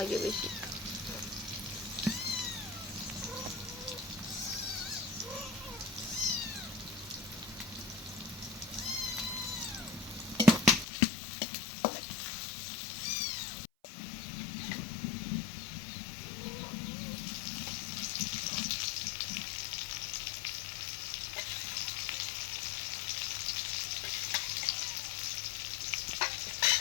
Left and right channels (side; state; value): right; drops out; at 10.9 s